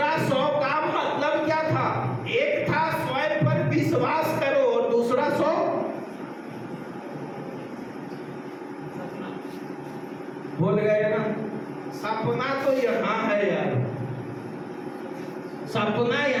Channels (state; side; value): identical; both; correlation 1.00